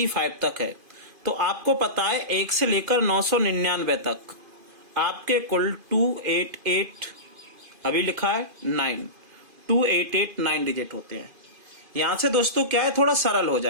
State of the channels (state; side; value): late; left; 2.5 ms